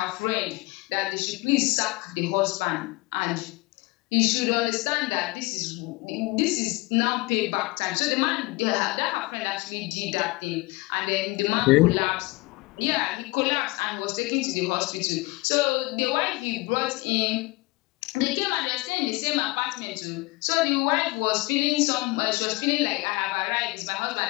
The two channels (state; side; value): quieter; right; 23.5 dB